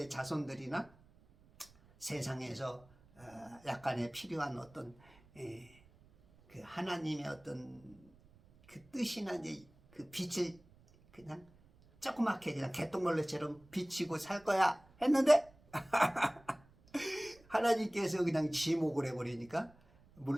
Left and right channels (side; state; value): right; noise; rumble, 27 dB below the sound